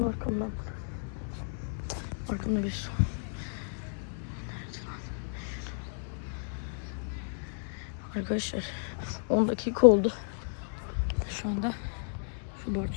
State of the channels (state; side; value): silent; right; digital silence